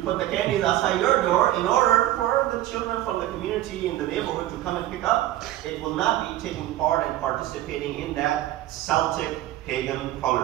the candies outside your door in order for the children from the community in the neighborhood to come and pick up. It will not be taking part and participating in that Celtic pagan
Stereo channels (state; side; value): quieter; left; 14.5 dB